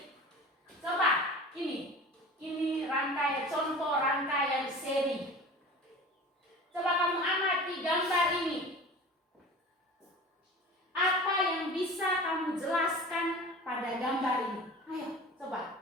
Coba, ini rangkaian, contoh rangkaian seri. Coba kamu amati gambar ini. Apa yang bisa kamu jelaskan pada gambar ini? Ayo, coba.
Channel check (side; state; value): both; normal; correlation 0.37